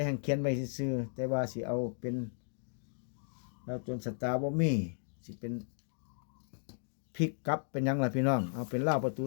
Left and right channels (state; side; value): silent; right; 54 dB below the other